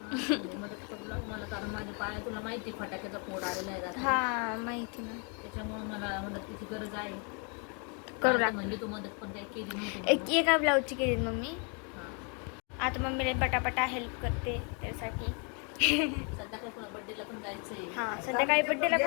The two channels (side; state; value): right; quieter; 36.9 dB